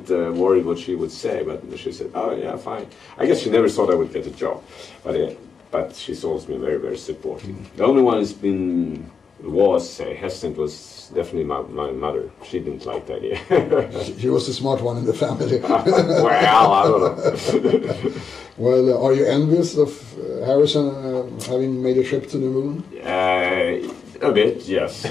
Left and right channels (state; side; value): quieter; right; 5.7 dB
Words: worried what she would say, but she said, oh yeah, fine. I guess she never thought I would get a job, but she's always been very, very supportive. The only one who's been hesitant was definitely my mother. She didn't like the idea. She was the smart one in the family. Well, I don't know. Well, are you envious of Harrisson having made a trip to the moon? A bit, yes.